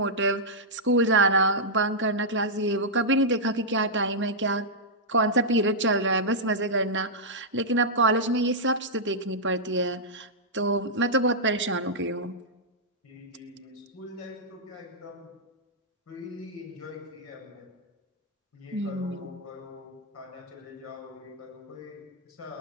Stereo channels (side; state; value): both; normal; correlation -0.09